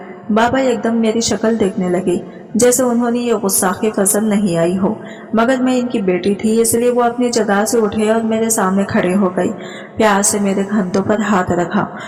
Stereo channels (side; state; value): both; identical; correlation 1.00